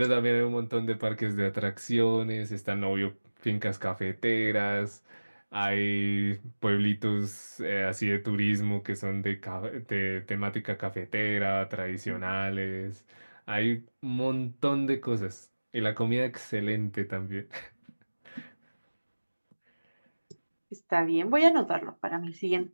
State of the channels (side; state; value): both; inverted; correlation -1.00